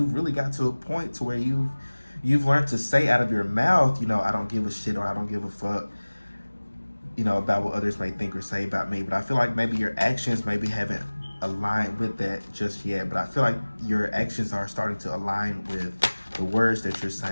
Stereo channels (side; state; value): both; inverted; correlation -1.00